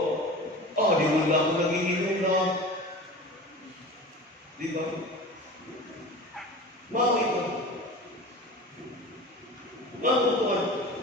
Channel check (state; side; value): normal; both; correlation 0.34